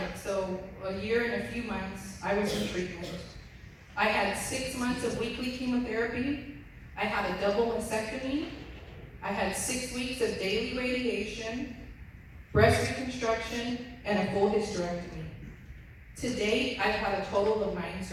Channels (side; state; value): both; identical; correlation 1.00